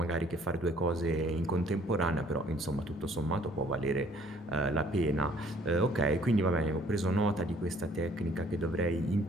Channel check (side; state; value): left; noise; rumble, 26 dB below the sound